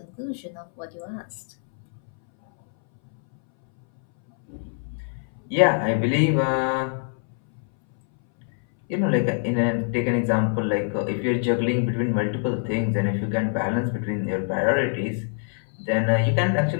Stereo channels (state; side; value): silent; right; 61 dB below the other